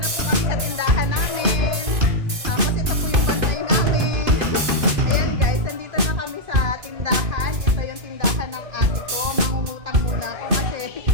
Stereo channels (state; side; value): late; left; 2.5 ms